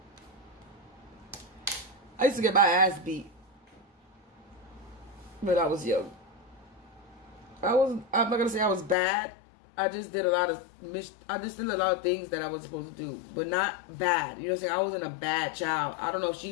I used to get my ass beat when I was young. I'm not gonna say I was bad. I just did a lot of things that I was supposed to do, but not bad. You know what I'm saying? I wasn't a bad child. I don't know if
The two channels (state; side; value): drops out; right; at 9.0 s